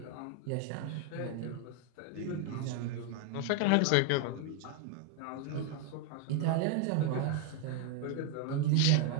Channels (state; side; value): different; both; correlation 0.00